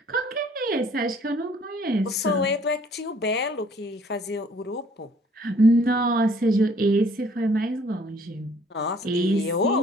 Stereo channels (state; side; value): normal; both; correlation 0.58